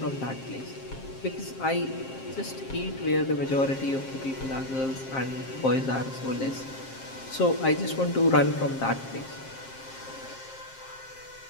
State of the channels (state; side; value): late; right; 7.5 ms